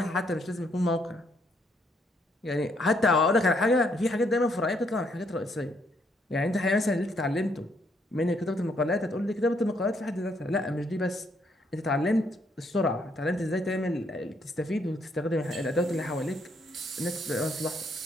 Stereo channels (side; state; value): both; normal; correlation 0.72